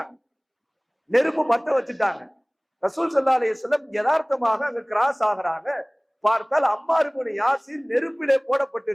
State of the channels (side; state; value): both; identical; correlation 1.00